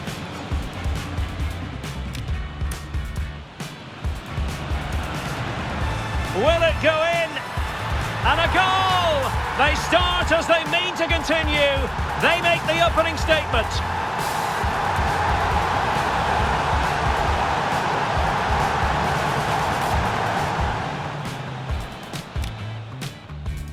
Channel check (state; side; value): identical; both; correlation 1.00